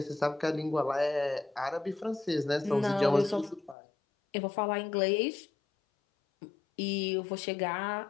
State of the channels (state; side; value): drops out; right; at 3.8 s